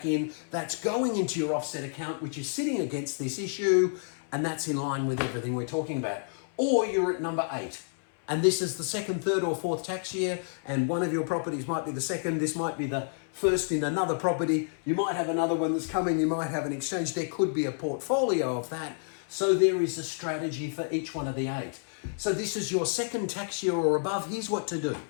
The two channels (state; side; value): silent; right; 58 dB below the other